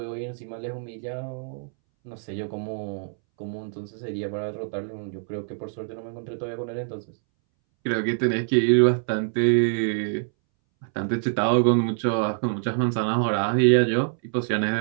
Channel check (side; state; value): left; silent; 61 dB below the other